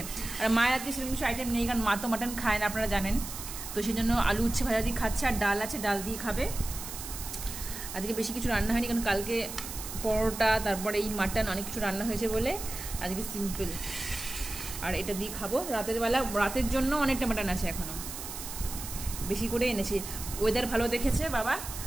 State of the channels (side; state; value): right; noise; hiss, 9 dB below the sound